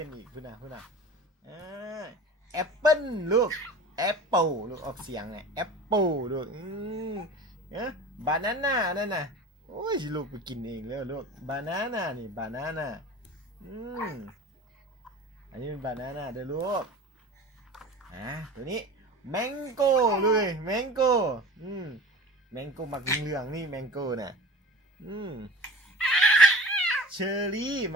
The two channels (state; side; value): normal; both; correlation 0.37